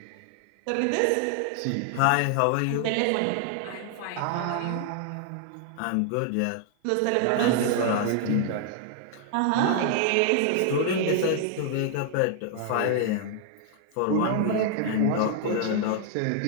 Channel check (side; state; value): both; different; correlation 0.00